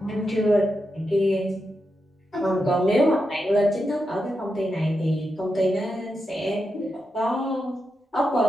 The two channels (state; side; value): normal; both; correlation 0.87